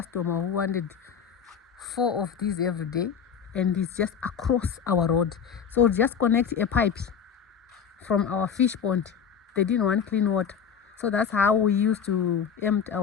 who wanted 4 of these every day, and it's just across our road. So just connect a pipe from our fish pond. They didn't want clean water, so that's how we used to empty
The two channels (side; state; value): right; quieter; 7.2 dB